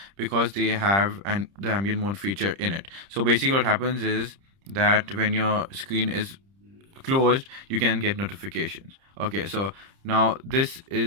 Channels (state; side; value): late; left; 30 ms